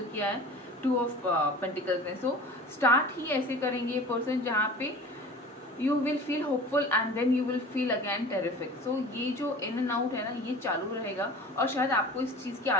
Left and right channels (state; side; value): normal; both; correlation 0.40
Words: किया है 2 of Pentacles ने। सो स्टार्ट ही ऐसे करेंगे ये पर्सन जहाँ पे you will feel hopeful and then you will feel again terrific. So ये जो इन एंड आउट है ना, ये चालू रहेगा, और शायद आपको इस चीज़ की